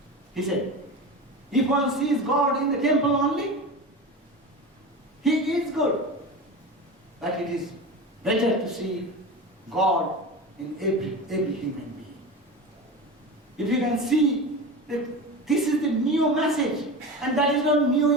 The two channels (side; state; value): both; normal; correlation 0.28